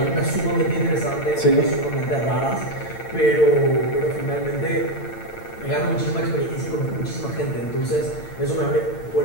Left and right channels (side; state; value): right; late; 8.8 ms